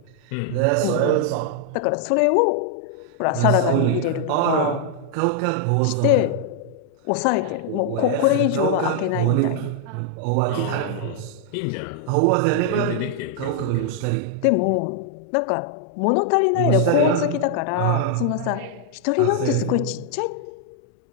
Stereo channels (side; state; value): both; different; correlation -0.01